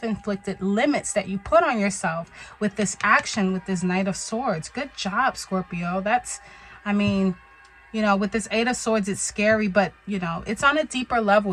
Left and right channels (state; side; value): identical; both; correlation 1.00